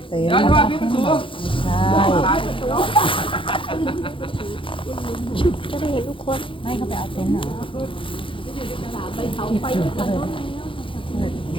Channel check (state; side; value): late; right; 0.25 ms